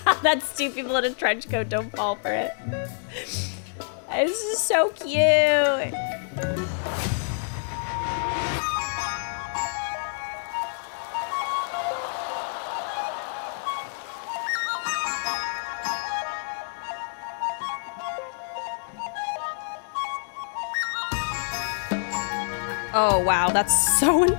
That's two people in a trench coat, don't fall for it. This is so cute. Oh wow, that's so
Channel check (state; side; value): silent; right; digital silence